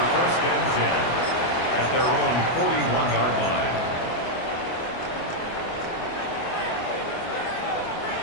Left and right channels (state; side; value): late; right; 24 ms